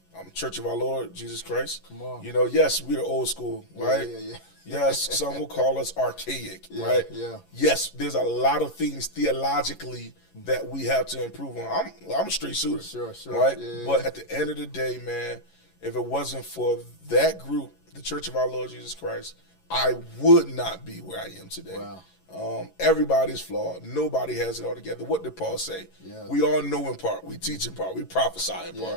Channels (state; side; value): late; right; 11 ms